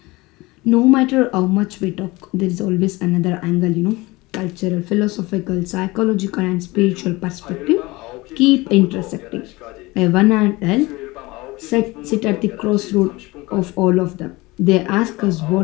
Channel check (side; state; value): right; quieter; 22.0 dB